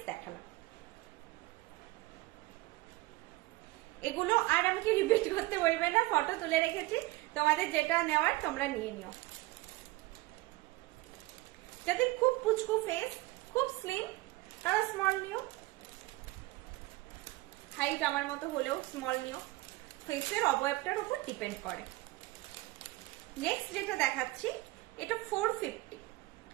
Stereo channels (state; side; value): quieter; left; 20.0 dB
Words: দেখালাম। এগুলো আর আমাকে রিপিট করতে বলবে না, ফটো তুলে রেখেছি, তোমাদের যেটা নেওয়ার তোমরা নিয়ে নিও। যাদের খুব পুচকু ফেস, খুব স্লিম, তারা স্মল নিও। হাইট আমার মতো হলেও স্মল নিও, ফেসের অবয়বটার উপর ডিপেন্ড করে। নেক্সট যেটা দেখাচ্ছি, এটা 450।